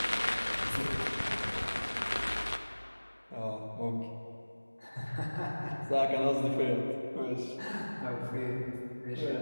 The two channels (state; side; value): inverted; both; correlation -1.00